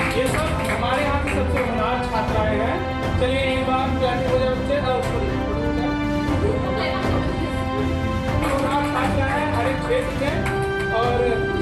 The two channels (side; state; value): both; identical; correlation 1.00